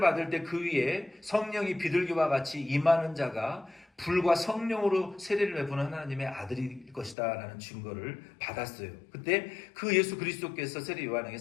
때 그 위에 성령이 비둘기와 같이 임하는 자가 불과 성령으로 세례를 베푸는 하나님의 아들일 것이다 라는 증거를 받았어요. 그때 그 예수 그리스도께서 세례 요한에게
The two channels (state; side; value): drops out; right; at 7.2 s